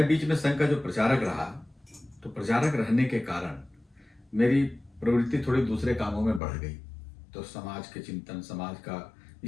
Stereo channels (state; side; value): drops out; right; at 6.4 s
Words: बीच में संघ का जो प्रचारक रहा, तो प्रचारक रहने के कारण मेरी प्रवृत्ति थोड़ी दूसरे कामों में बढ़ गई। तो समाज के चिंतन, समाज का